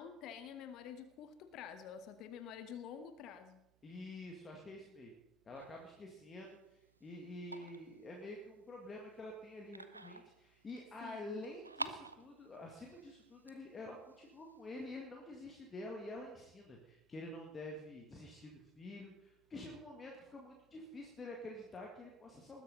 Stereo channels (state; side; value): noise; right; hum, 27 dB below the sound